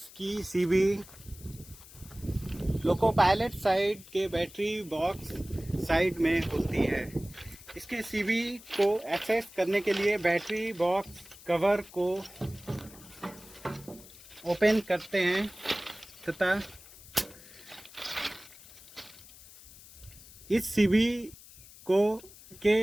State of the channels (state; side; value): noise; left; hiss, 20 dB below the sound